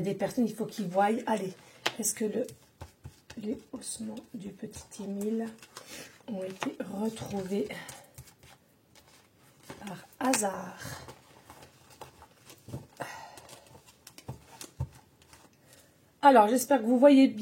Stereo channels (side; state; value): both; identical; correlation 1.00